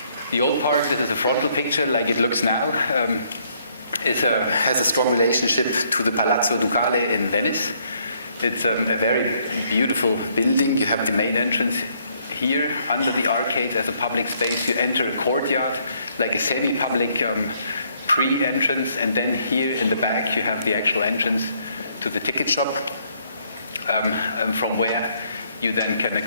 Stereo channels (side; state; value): both; inverted; correlation -0.68